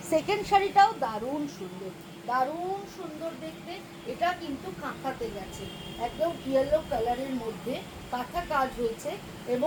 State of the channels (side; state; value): both; identical; correlation 1.00